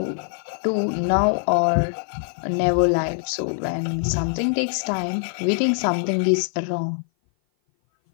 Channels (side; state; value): right; silent; 57 dB below the other